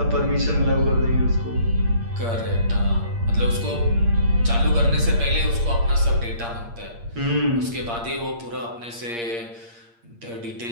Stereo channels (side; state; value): left; late; 8.6 ms